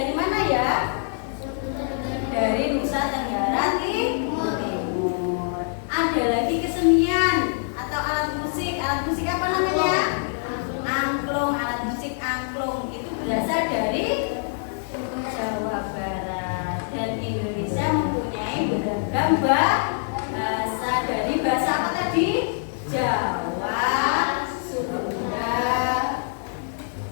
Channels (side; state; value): right; silent; digital silence